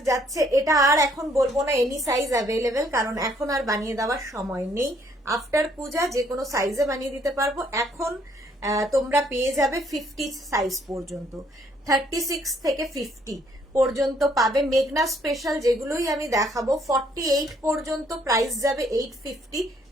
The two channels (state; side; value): normal; both; correlation 0.66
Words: যাচ্ছে। এটা আর এখন বলবো না এনি সাইজ অ্যাভেলেবেল, কারণ এখন আর বানিয়ে দেওয়ার সময় নেই। আফটার পূজা যে কোনো সাইজে বানিয়ে দিতে পারবো। এখন তোমরা পেয়ে যাবে 50 সাইজ পর্যন্ত, 36 থেকে 50 পর্যন্ত পাবে। মেঘনা স্পেশাল যেগুলোই আমি দেখাবো 48 পর্যন্ত প্রাইস যাবে 850,